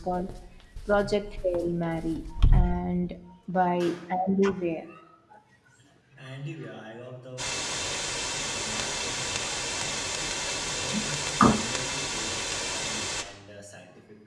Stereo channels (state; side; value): identical; both; correlation 1.00